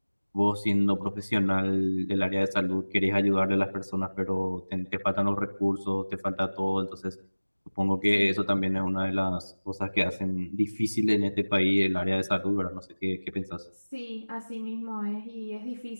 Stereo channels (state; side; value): inverted; both; correlation -1.00